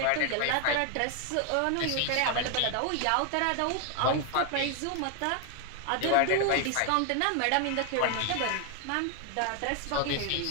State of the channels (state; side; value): different; both; correlation 0.01